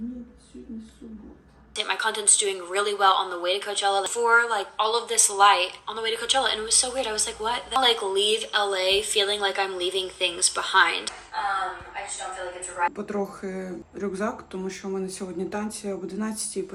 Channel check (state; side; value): identical; both; correlation 1.00